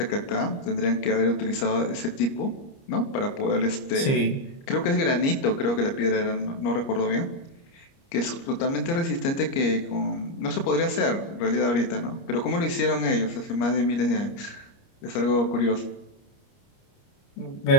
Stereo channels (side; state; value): right; late; 30 ms